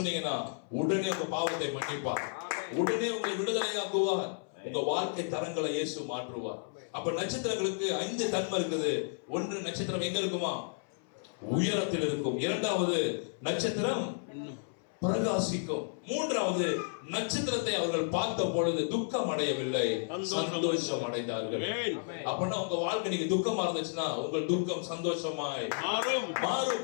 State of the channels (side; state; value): right; silent; 56 dB below the other